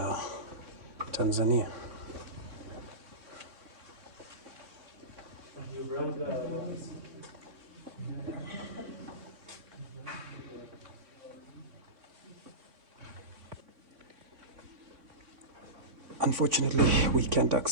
Tanzania. Unfortunately, we can't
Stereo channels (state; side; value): late; left; 3.6 ms